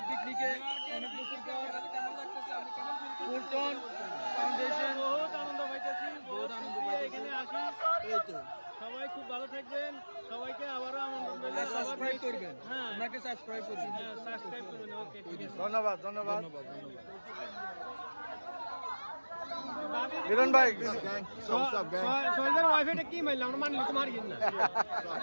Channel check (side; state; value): both; inverted; correlation -1.00